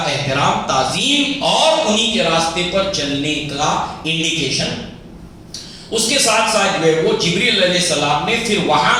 احترام، تعظیم اور انہی کے راستے پر چلنے کا انڈیکیشن۔ اس کے ساتھ ساتھ جو ہے وہ جبریل علیہ السلام نے پھر وہاں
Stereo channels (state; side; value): identical; both; correlation 1.00